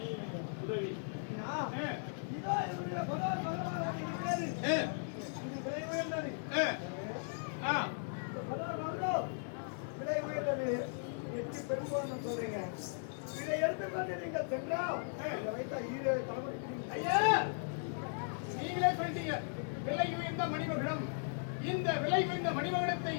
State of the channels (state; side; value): silent; right; digital silence